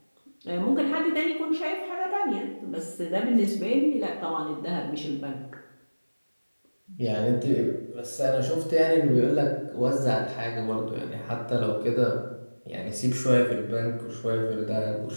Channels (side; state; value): both; inverted; correlation -1.00